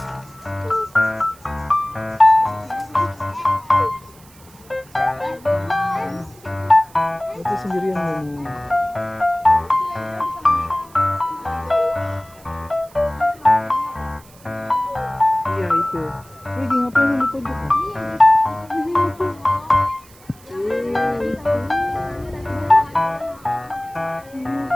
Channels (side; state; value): right; noise; hiss, 25 dB below the sound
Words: Itu sendirian nih. Iya itu. Lagi ngapain di pojok?